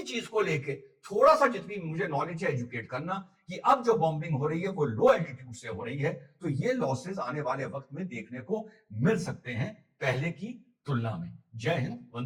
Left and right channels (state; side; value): identical; both; correlation 1.00